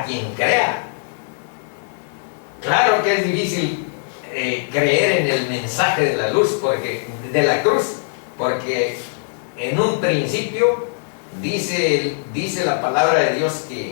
quien crea. Claro que es difícil creer en el mensaje de la luz, de la cruz, porque en un principio dice la palabra de Dios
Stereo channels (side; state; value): right; silent; digital silence